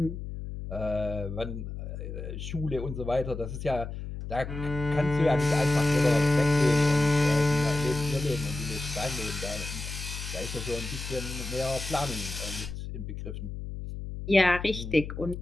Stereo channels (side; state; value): left; noise; hum, 8 dB below the sound